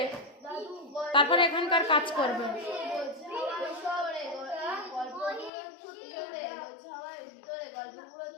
তারপর এখানকার কাজ করবে।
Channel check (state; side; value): drops out; right; at 5.5 s